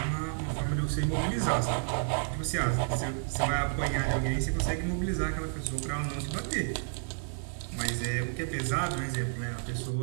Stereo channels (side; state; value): left; silent; 57 dB below the other